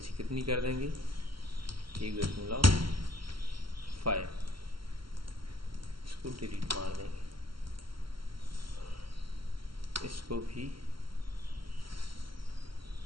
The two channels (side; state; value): left; late; 0.74 ms